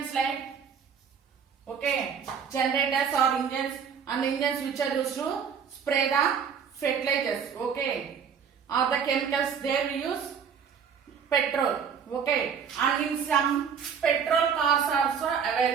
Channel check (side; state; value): left; quieter; 7.0 dB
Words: like generators or engines, and the engines which are used to spray the fertilizers, or the chemicals, there we use petrol. And in some petrol cars also